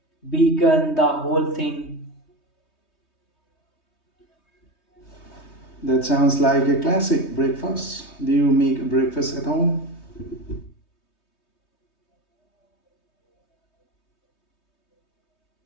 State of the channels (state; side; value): late; right; 3.2 ms